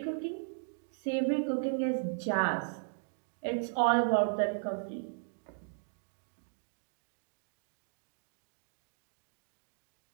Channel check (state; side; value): silent; left; digital silence